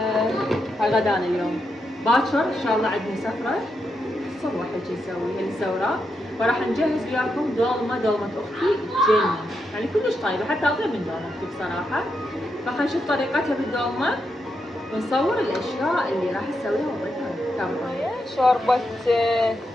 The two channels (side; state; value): both; normal; correlation 0.83